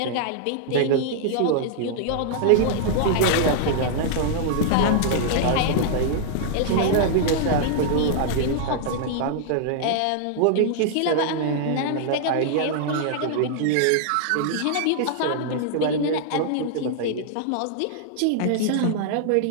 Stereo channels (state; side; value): different; both; correlation -0.01